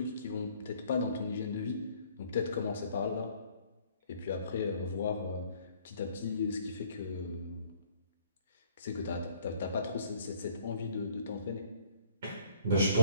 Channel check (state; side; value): inverted; both; correlation -0.60